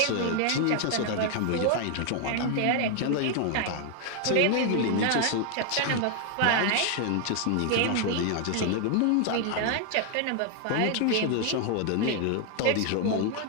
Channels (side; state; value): both; different; correlation 0.00